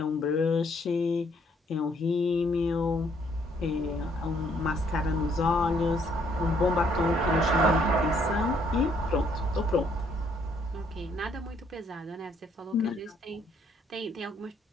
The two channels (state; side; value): normal; both; correlation 0.67